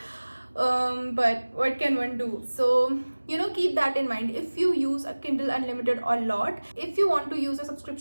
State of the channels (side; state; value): both; inverted; correlation -1.00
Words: But what can one do? So, you know, keep that in mind. If you use a Kindle Unlimited a lot, if you want to use a